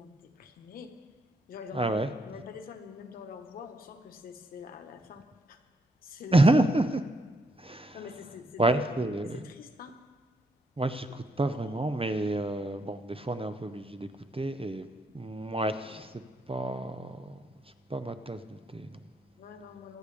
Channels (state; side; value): normal; both; correlation 0.75